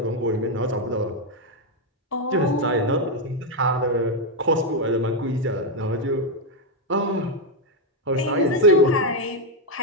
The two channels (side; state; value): both; normal; correlation 0.03